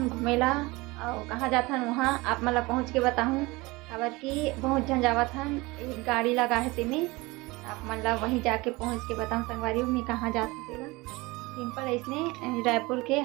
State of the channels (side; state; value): left; quieter; 22.7 dB